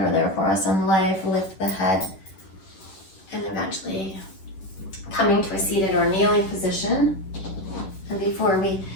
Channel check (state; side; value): late; right; 10 ms